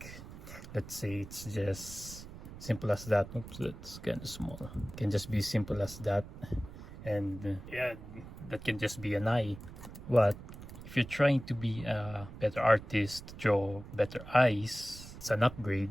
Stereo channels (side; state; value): right; noise; rumble, 14 dB below the sound